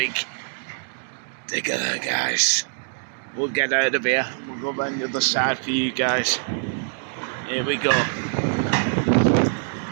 digger there, guys. We'll get out of here. We'll go around the other side for you guys. Here we go.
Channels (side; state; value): left; silent; digital silence